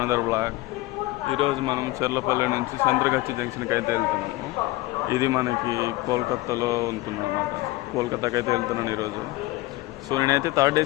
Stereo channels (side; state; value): right; quieter; 19.3 dB